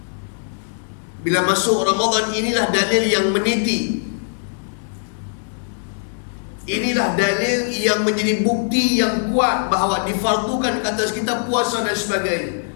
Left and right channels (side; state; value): right; silent; 65 dB below the other